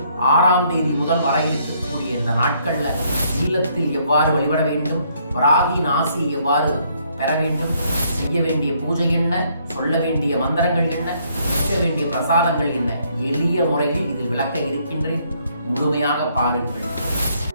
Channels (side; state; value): both; inverted; correlation -0.68